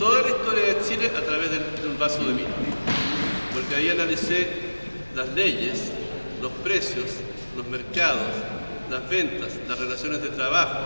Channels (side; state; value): both; inverted; correlation -1.00